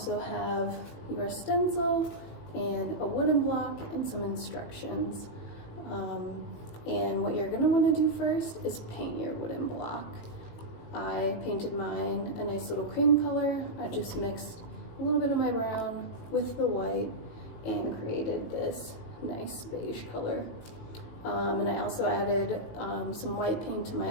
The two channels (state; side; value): late; right; 18 ms